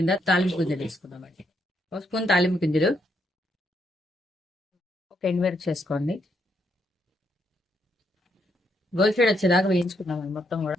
తాలింపు గింజలు వేసుకుందామండి. ఒక స్పూన్ తాలింపు గింజలు, ఒక ఎండుమిరపకాయ చేసుకోండి. గోల్ షేడ్ వచ్చేదాకా వేయించుకుందామండి. మొత్తం కూడా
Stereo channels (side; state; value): both; normal; correlation 0.77